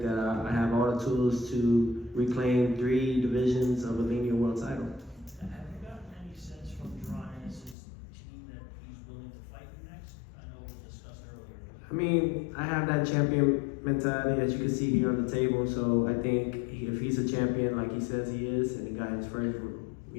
that I have all the tools to reclaim 3 divisions of a linear world title. Have you gotten any sense from Jaron Ennis' team that he's willing to fight you next? I know it was discussed earlier. I mean, I have that champion mentality, as you can see here on the table. So I think if he's a champion like he says he is, and he got his first,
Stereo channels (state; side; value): drops out; right; at 7.8 s